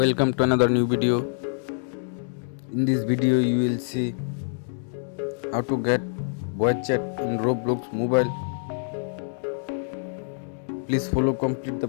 to another new video. In this video you will see how to get voice chat in Roblox mobile. Please follow complete the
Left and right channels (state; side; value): silent; right; digital silence